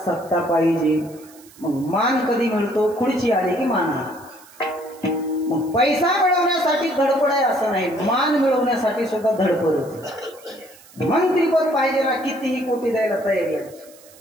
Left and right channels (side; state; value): right; noise; hiss, 24 dB below the sound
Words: पाहिजे. मग मान कधी मिळतो, खुर्ची आली की मान आला. मग पैसा मिळवण्यासाठी धडपड आहे असं नाही, मान मिळवण्यासाठी सुद्धा धडपडच. मंत्रीपद पाहिजे ना, कितीही कोटी द्यायला तयारी आहे,